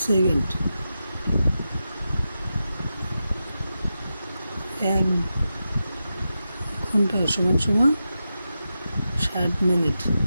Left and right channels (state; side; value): inverted; both; correlation -0.90